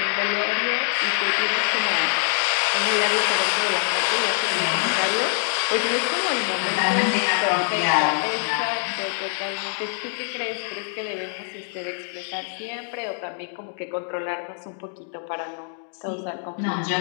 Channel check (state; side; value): silent; right; 59 dB below the other